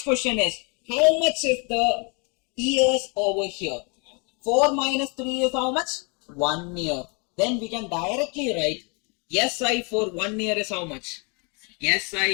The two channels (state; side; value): quieter; right; 33.6 dB